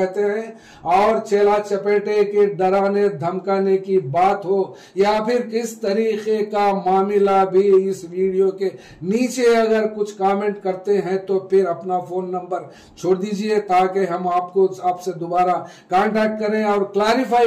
हैं। और चेला चपेटे के डराने धमकाने की बात हो या फिर किस तरीके का मामला भी इस वीडियो के नीचे अगर कुछ कमेंट करते हैं तो फिर अपना फोन नंबर छोड़ दीजिए ताकि हम आपसे दोबारा कांटेक्ट करें और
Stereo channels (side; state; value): both; identical; correlation 1.00